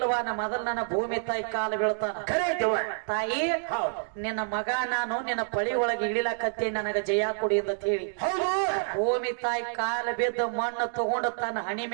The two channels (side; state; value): left; silent; digital silence